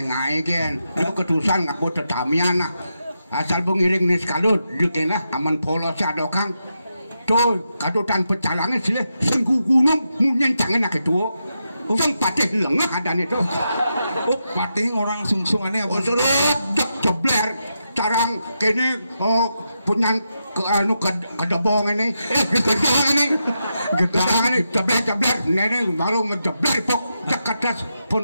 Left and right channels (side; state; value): both; inverted; correlation -0.85